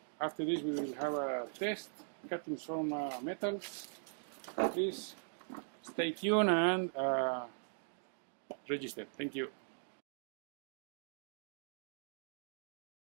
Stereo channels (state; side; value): silent; left; digital silence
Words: After this, we will have a test, cutting some metals. Please stay tuned and register. Thank you.